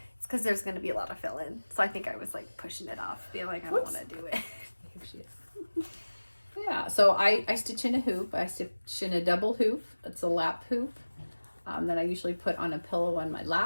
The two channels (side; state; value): both; inverted; correlation -1.00